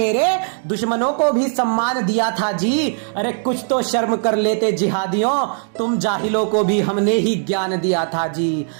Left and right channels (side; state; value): left; silent; digital silence